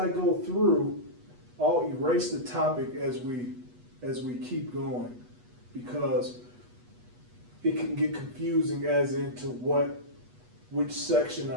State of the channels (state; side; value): late; left; 8.2 ms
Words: go through, I'll erase the topic as we keep going, because it can get confusing as into which section